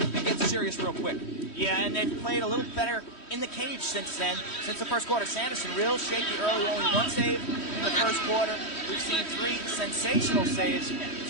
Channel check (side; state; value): right; late; 3.1 ms